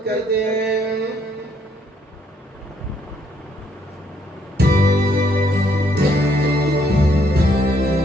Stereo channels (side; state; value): both; normal; correlation 0.70